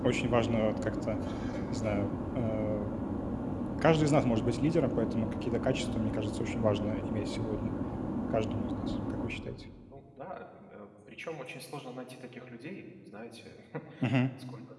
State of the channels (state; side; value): identical; both; correlation 1.00